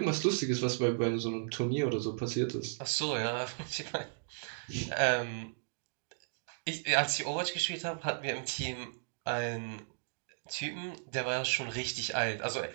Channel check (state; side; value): silent; left; digital silence